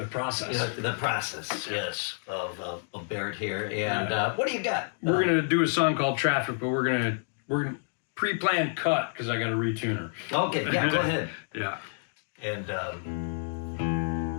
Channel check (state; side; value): silent; right; 59 dB below the other